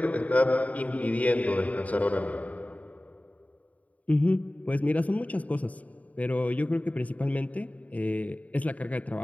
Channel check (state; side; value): late; right; 0.070 ms